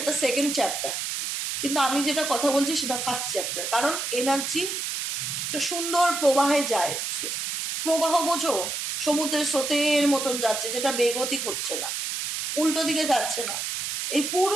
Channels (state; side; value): noise; right; hiss, 3 dB below the sound